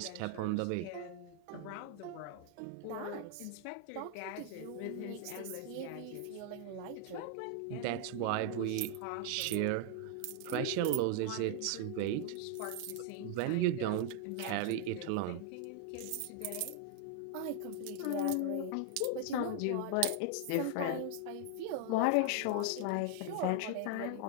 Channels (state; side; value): different; both; correlation 0.00